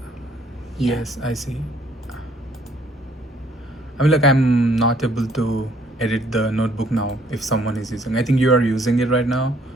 yes, I see. I mean, like, I'm not able to edit the notebook now if someone is using. I think you are using it right now,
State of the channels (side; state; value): both; normal; correlation 0.63